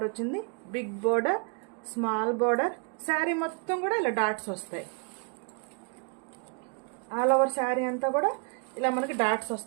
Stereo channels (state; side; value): quieter; left; 36.2 dB